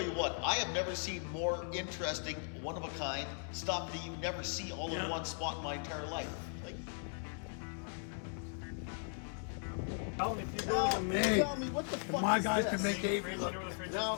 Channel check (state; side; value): silent; right; 52 dB below the other